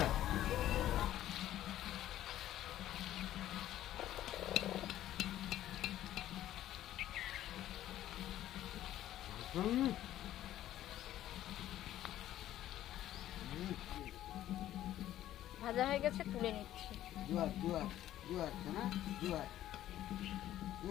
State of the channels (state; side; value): quieter; right; 13.0 dB